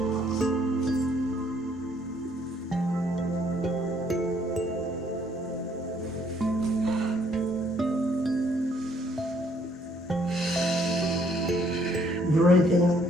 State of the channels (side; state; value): both; normal; correlation 0.65